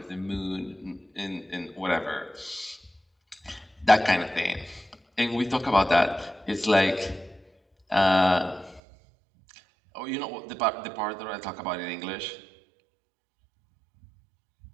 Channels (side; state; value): left; drops out; at 8.8 s